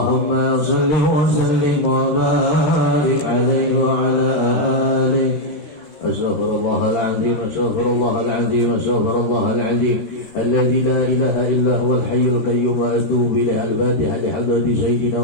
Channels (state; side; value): late; right; 13 ms